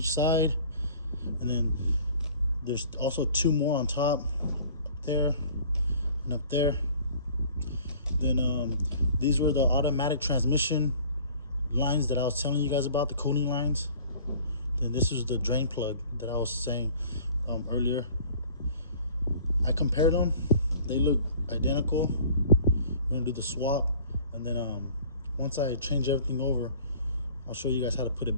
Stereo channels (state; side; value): inverted; both; correlation -0.49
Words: side, and then there's also 2 more on top, there and up there. Then these were the automatic transmission lines that I was telling you guys about, the cooling lines. Then this is the drain plug that I was saying earlier. I compared them. They look identical. We're gonna do the swap, and then once I change everything over, I'll show you guys how to put